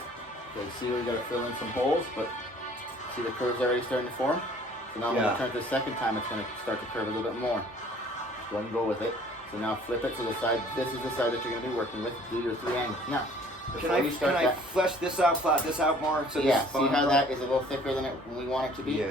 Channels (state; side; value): normal; both; correlation 0.54